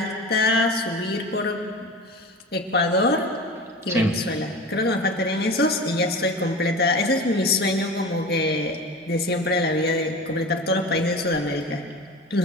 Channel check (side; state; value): both; normal; correlation 0.32